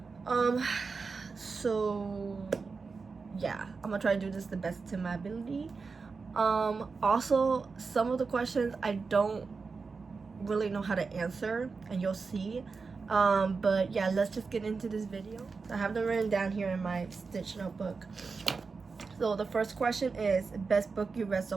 So yeah, I'm gonna try to do this the best to my ability. Also, some of the questions I don't really know how to answer, and you'll see. But yeah, let's just get into this video. I have them written down here in my Stitch notebook. So the first question is best book you read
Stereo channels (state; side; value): quieter; left; 4.6 dB